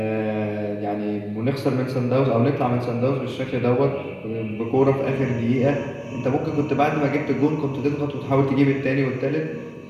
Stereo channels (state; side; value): identical; both; correlation 1.00